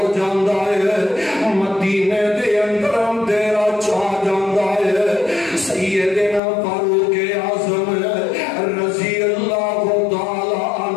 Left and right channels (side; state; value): right; drops out; at 6.4 s